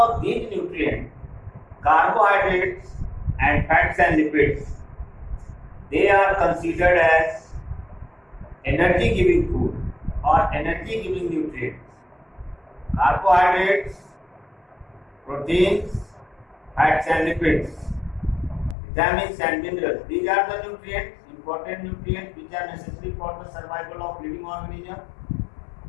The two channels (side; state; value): right; drops out; at 18.8 s